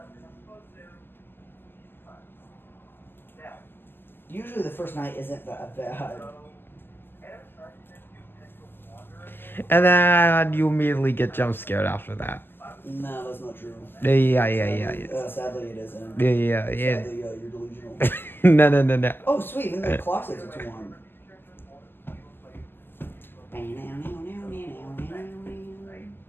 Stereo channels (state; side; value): late; right; 0.099 ms